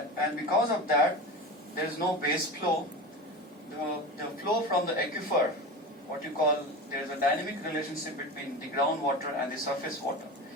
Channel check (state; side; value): normal; both; correlation 0.27